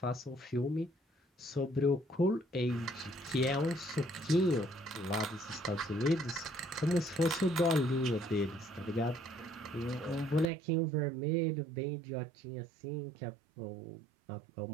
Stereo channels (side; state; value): left; drops out; at 10.5 s